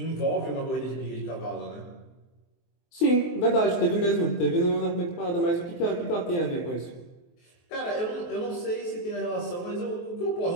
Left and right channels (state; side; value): late; right; 23 ms